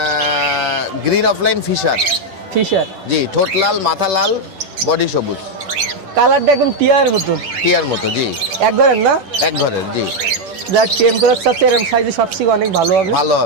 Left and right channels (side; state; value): left; late; 10 ms